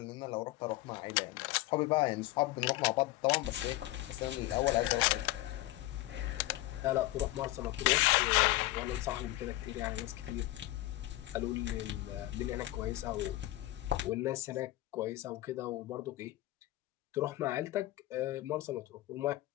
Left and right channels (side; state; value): right; quieter; 17.3 dB